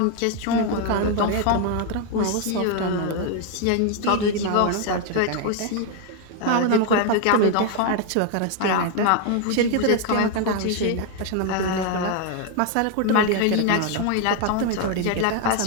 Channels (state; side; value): different; both; correlation 0.00